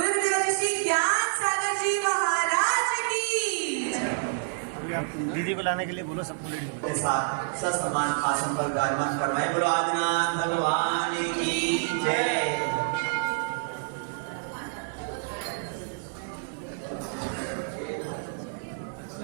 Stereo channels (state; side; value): silent; left; digital silence